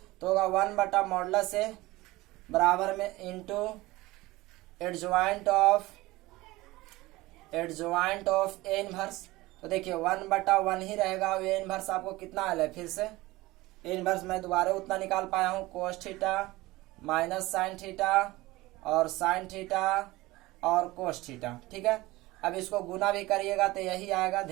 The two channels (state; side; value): quieter; left; 19.7 dB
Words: तो होगा 1 बटा मॉडुलस ए बराबर में into adjoint of A inverse. तो देखिए 1 बटा 1 ही रहेगा। ए इनवर्स आपको कितना आया है, फिर से ए इनवर्स मैं दोबारा उतना निकाल पाया हूँ, cos theta minus sine theta और साइन थीटा और कोस थीटा, ठीक है। अब इसको गुना भी करिएगा तो यही आएगा,